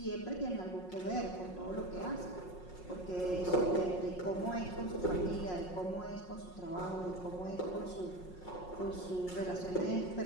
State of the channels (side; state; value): right; late; 5.5 ms